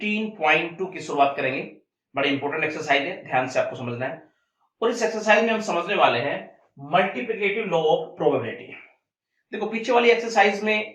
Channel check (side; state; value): both; identical; correlation 1.00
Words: की शुरुआत करेंगे। बड़ी इंपॉर्टेंट एक्सरसाइज है, ध्यान से आपको समझना है। और इस एक्सरसाइज में हम समझने वाले हैं मल्टीप्लिकेटिव लॉ ऑफ प्रोबेबिलिटी। देखो, पीछे वाली एक्सरसाइज